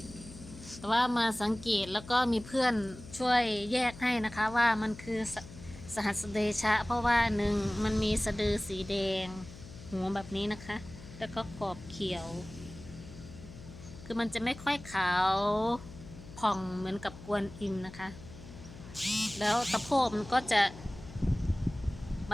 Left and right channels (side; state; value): left; noise; hum, 16 dB below the sound